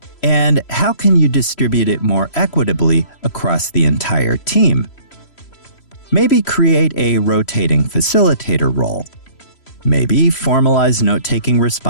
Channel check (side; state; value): right; late; 3.1 ms